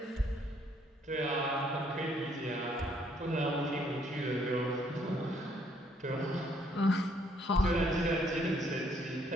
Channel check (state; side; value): normal; both; correlation 0.67